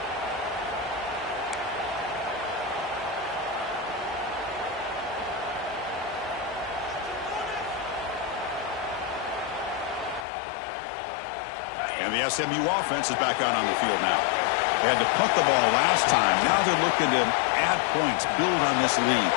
And the SMU offense is back out on the field now. They had to punt the ball last time. Now they're looking to add points, build on this lead.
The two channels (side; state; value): right; drops out; at 10.2 s